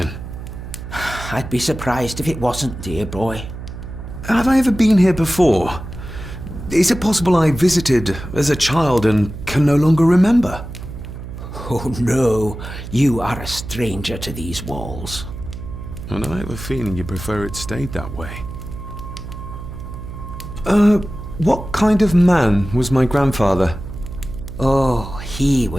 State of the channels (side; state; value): right; noise; hum, 10 dB below the sound